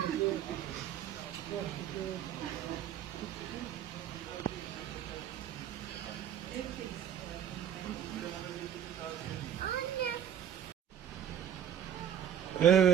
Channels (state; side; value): quieter; left; 9.6 dB